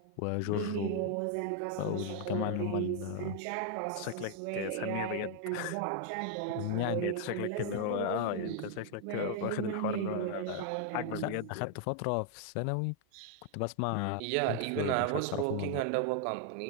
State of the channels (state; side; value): different; both; correlation 0.00